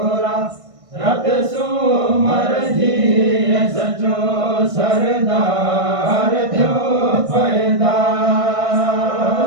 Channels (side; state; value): left; late; 1.5 ms